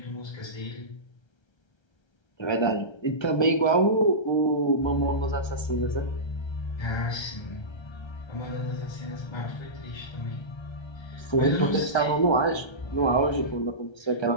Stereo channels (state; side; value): late; right; 1.3 ms